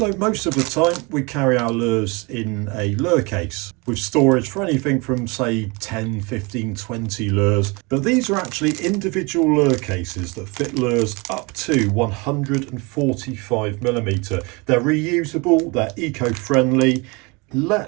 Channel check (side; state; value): left; quieter; 27.7 dB